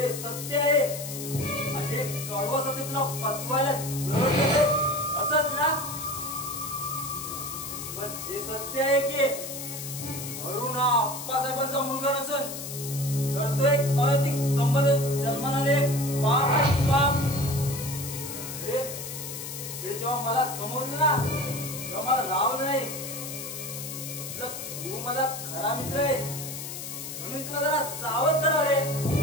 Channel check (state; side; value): noise; left; hiss, 8 dB below the sound